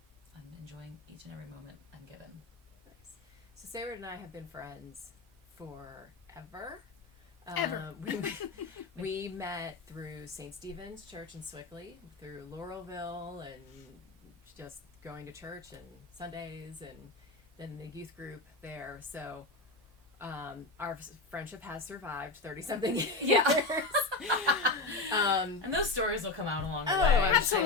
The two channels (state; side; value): quieter; right; 3.3 dB